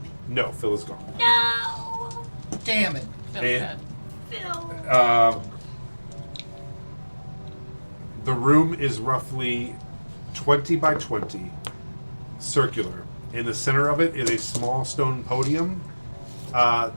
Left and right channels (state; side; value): inverted; both; correlation -1.00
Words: me? No, Phil is gone. No! Damn it. Feels And- good. Phil. The room is roughly 20 by 20, circular. In the center of it is a small stone podium